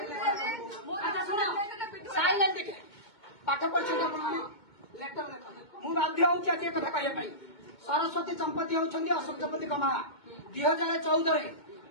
मु अच्छा सुनो साइलेंट देखे पाठ पढ़छ आपण माने लेटर मु बाध्य होछि आज कथा कहय पई सरस्वती संपत्ति होछंदी अशोक संपत्ति कमा 2014 रे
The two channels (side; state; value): right; late; 2.2 ms